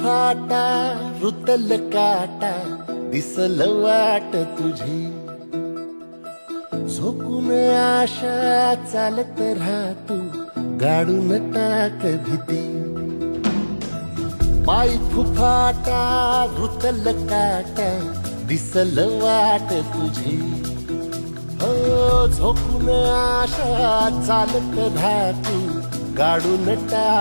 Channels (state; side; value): inverted; both; correlation -1.00